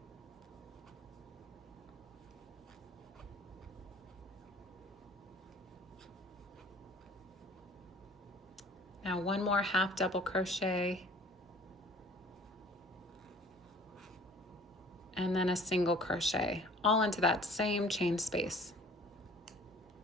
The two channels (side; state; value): both; normal; correlation 0.51